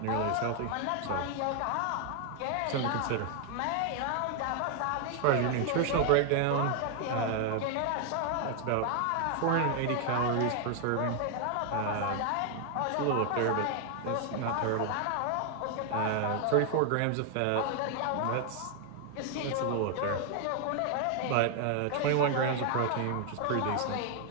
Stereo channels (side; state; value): both; different; correlation 0.00